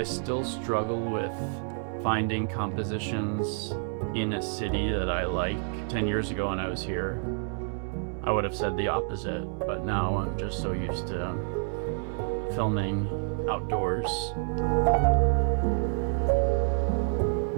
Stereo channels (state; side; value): silent; left; 56 dB below the other